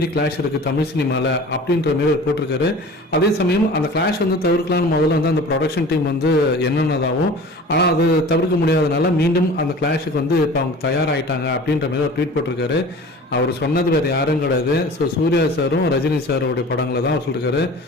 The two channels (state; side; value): normal; both; correlation 0.41